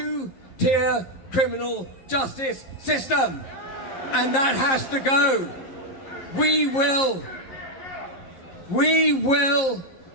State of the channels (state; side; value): late; right; 11 ms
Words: criminal justice system. And that has to go. We will